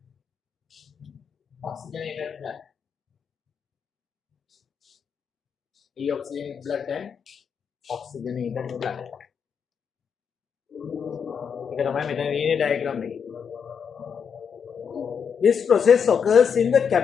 Oxygenated blood. Deoxygenated blood and oxygenated blood. This process occurs in the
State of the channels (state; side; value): quieter; right; 6.9 dB